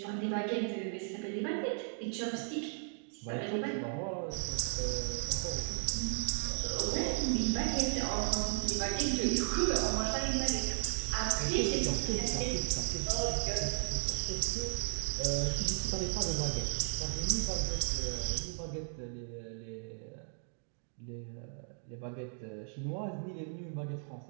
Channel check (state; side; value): silent; left; 54 dB below the other